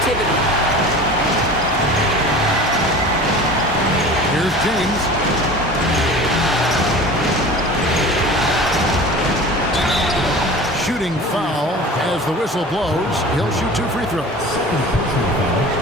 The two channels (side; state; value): both; normal; correlation 0.38